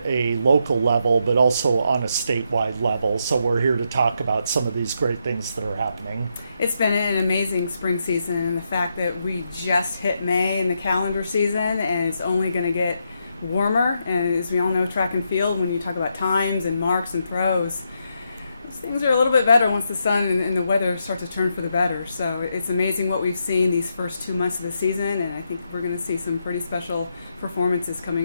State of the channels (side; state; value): both; inverted; correlation -0.81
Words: a local level but also on a statewide level. So we're here to talk about some of these great things that are happening. It's been an amazing spring season, and the fact that we just hit May in the calendar season and it's only going to get warmer. And as we all know, track and field, when you talk about times and marks and throws, things are a little bit better once the sun and the weather start to turn for the better. So it's amazing what we've seen these first 2 months of the season, and I think we're going to see some pretty special performances